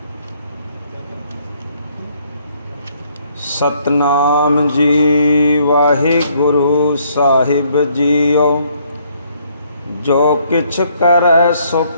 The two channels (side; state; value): both; inverted; correlation -0.67